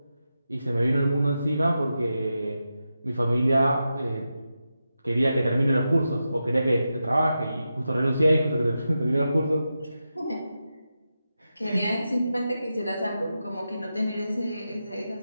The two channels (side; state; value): both; inverted; correlation -0.89